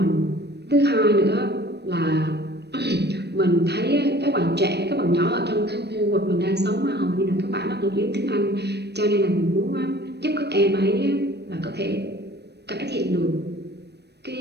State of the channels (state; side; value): late; left; 0.49 ms